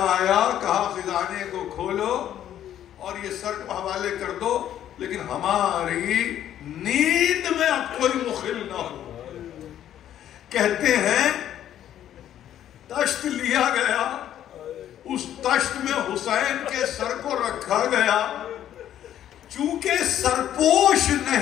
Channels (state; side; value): quieter; right; 11.1 dB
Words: آیا. کہا خزانے کو کھولو اور یہ سر کو حوالے کر دو، لیکن ہماری نیند میں اب کوئی مخل نہ ہو. کہتے ہیں تشت لیا گیا، اس تشت میں حسین کے سر کو رکھا گیا. چونکہ سرپوش